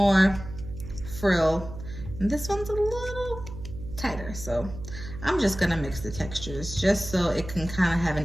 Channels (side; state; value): right; noise; hum, 11 dB below the sound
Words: frill, and this one's a little tighter. So I'm just gonna mix the textures just so it can kind of have